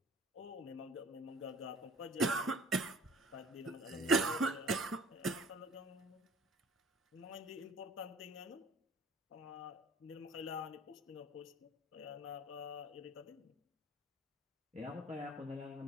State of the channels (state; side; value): normal; both; correlation 0.49